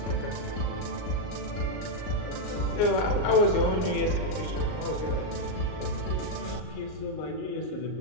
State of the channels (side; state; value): right; late; 38 ms